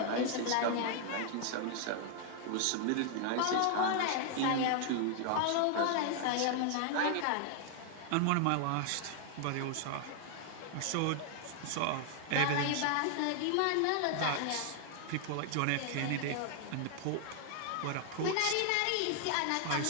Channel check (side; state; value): both; different; correlation 0.00